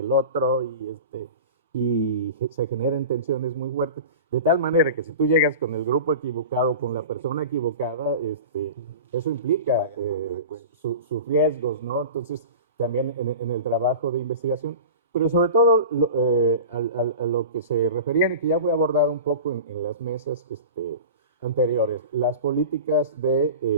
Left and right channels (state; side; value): inverted; both; correlation -0.34